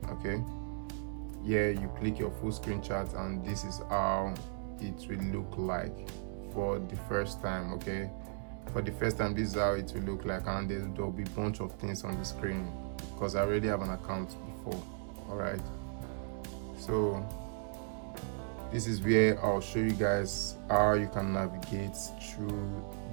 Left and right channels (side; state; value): left; silent; digital silence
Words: Okay, yeah, you click your full screen chart, and this is how it will look like for the first time. Okay, for the first time, this is how it will look like, and there'll be a bunch of things on the screen because I already have an account before. All right, so this is where I'll show you guys how you can navigate through